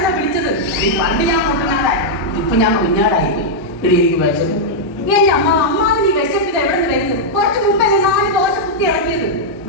വിളിച്ചത്. പണ്ട് ഞാൻ മുട്ടനാടായി, ഇപ്പൊ ഞാൻ കുഞ്ഞാടായി പോയി. എനിക്ക് വിശപ്പ്. എന്റെ അമ്മാവ് നീ വിശപ്പിത് എവിടെ നിന്ന് വരുന്നത്? കുറച്ച് മുമ്പല്ലേ 4 ദോശ കുത്തി ഇറക്കിയത്.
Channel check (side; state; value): both; normal; correlation -0.05